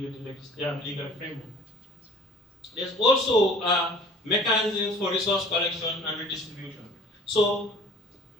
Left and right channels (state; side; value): normal; both; correlation 0.48